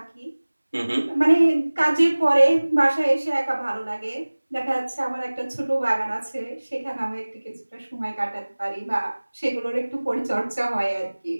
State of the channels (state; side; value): inverted; both; correlation -1.00